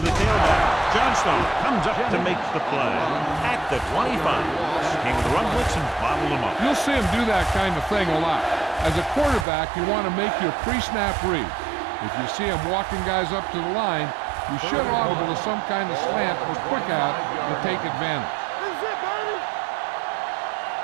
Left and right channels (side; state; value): left; drops out; at 9.5 s